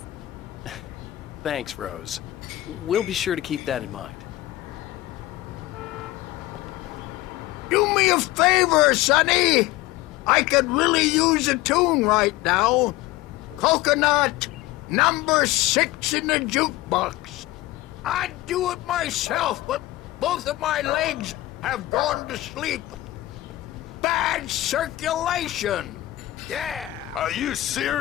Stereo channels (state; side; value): quieter; right; 17.3 dB